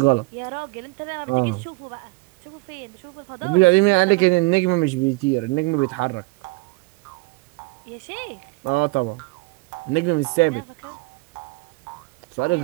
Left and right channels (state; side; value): quieter; left; 25.7 dB